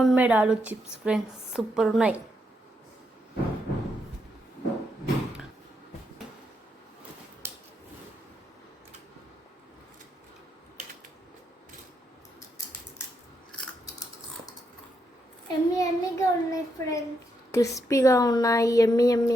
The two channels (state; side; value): normal; both; correlation 0.80